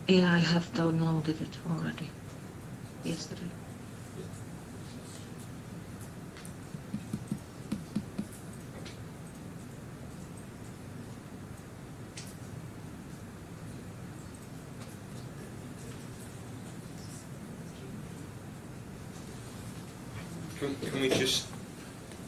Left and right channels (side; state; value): both; identical; correlation 1.00